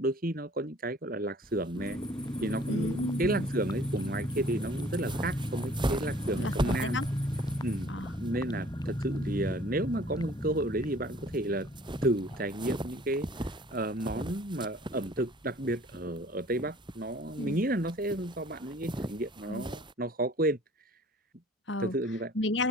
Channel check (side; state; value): both; normal; correlation 0.52